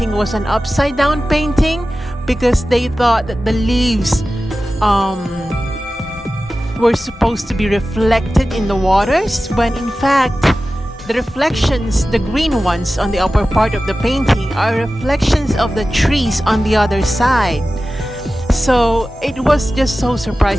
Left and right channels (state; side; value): normal; both; correlation 0.95